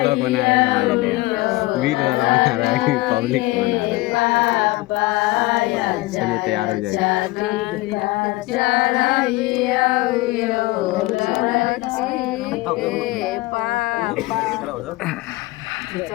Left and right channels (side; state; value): right; quieter; 20.3 dB